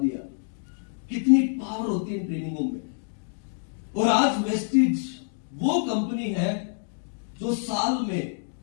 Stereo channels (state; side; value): silent; right; digital silence